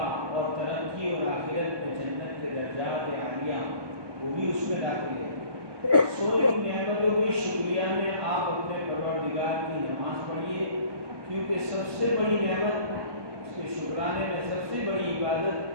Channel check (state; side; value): late; left; 1.2 ms